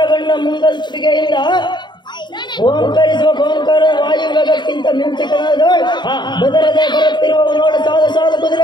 ಮುಂಗಲ್ಪಿಗೆಯಿಂದ ಓಂಕರಿಸುವ ಓಂಕಾರ ವಾಯುವೇಗಕ್ಕಿಂತ ಮಿಂಚಕನಾದ ಬೆದರದೆ ಬರುತ್ತಿರುವ ನೋಡ ಸಾಲು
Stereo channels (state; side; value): late; right; 0.22 ms